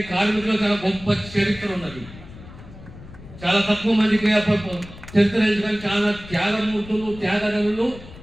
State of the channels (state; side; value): noise; left; rumble, 17 dB below the sound